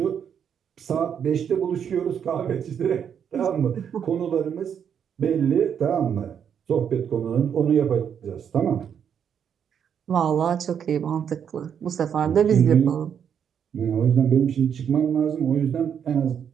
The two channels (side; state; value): left; quieter; 8.1 dB